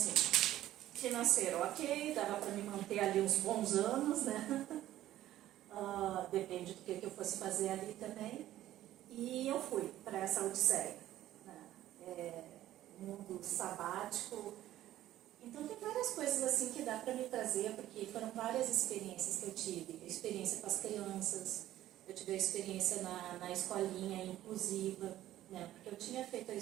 financeiro ok, dava para me manter ali uns bons anos, né? Depende do que eu fosse fazer ali também. E eu fui para essa odisseia, né? mundo sabático. Então tem várias coisas assim que dá para me trazer, porque foram várias experiências que eu tive. A experiência com as crianças, eu tive a experiência na escolinha inclusiva, né? Porque eu tinha feito a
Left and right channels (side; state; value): left; quieter; 13.7 dB